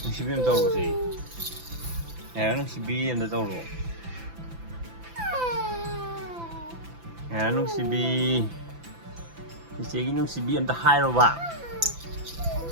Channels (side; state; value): left; late; 5.9 ms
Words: Nung sibi daw ro si. Ngaira nung sibi daw ro. Ngaira nung sibi. Sige nung sibi ta hai ro ba.